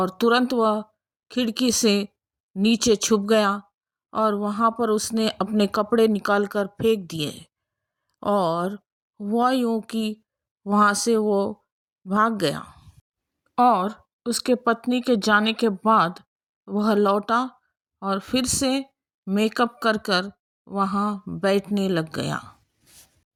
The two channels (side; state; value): both; identical; correlation 1.00